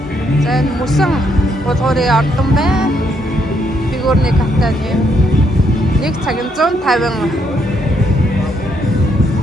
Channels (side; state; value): both; normal; correlation 0.74